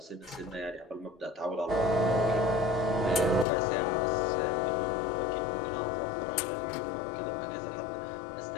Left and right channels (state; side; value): drops out; right; at 3.5 s